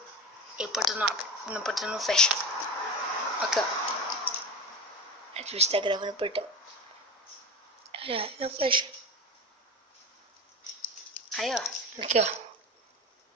e o portão não abre, o portão não fecha. Aqui, ó. A gente está gravando o portão. Olha, não fecha. Aí, ó. Aqui,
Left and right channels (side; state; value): both; normal; correlation 0.27